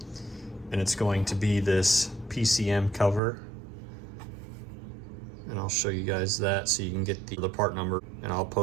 and it's going to be this PCM cover, and I'll show you guys that so you can get the part number, and I'll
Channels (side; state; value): left; drops out; at 3.2 s